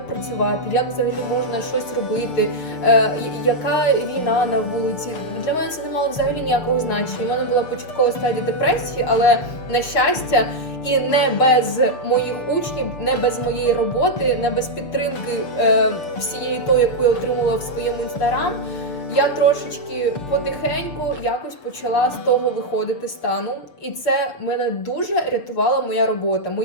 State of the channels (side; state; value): right; late; 6.8 ms